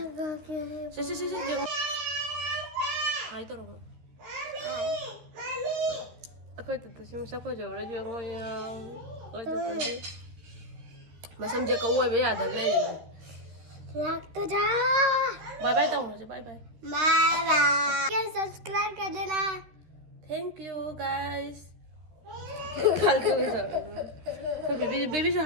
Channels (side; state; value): left; late; 13 ms